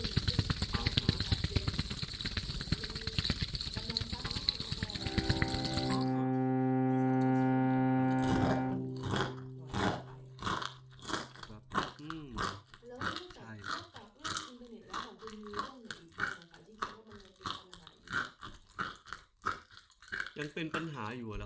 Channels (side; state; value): both; identical; correlation 1.00